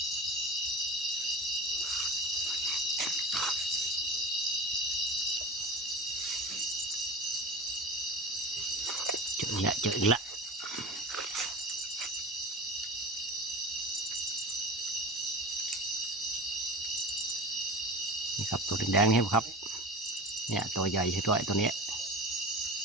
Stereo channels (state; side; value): normal; both; correlation 0.32